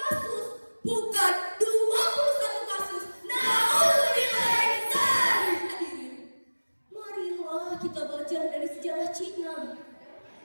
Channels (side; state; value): both; inverted; correlation -1.00